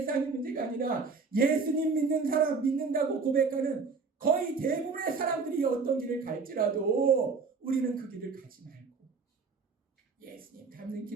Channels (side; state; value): left; quieter; 4.7 dB